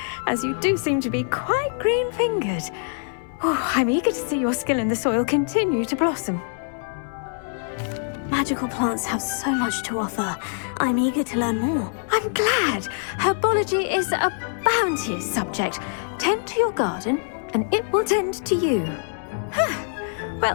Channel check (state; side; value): silent; right; 63 dB below the other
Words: as you do seem to be quite green-fingered. Oh, I'm eager to see your skill in the soil continue to blossom. Magical plants have so much to offer. I'm eager to learn more. I'm glad. Herbology is a bounteous subject. Tend to your garden, and it will tend to you.